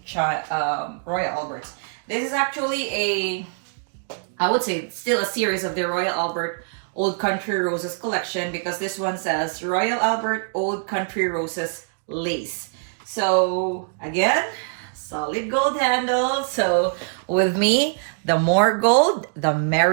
Royal Alberts. This is actually I would say still a series of the Royal Albert Old Country Roses collection, because this one says Royal Albert Old Country Roses lace. So again, solid gold handle. So with me, the more gold, the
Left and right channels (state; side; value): silent; left; digital silence